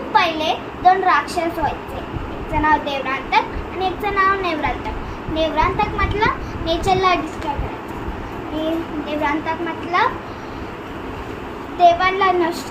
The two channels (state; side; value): identical; both; correlation 1.00